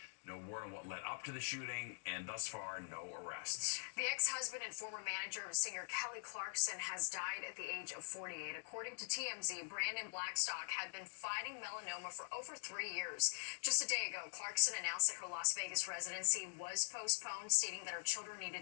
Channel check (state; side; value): silent; right; digital silence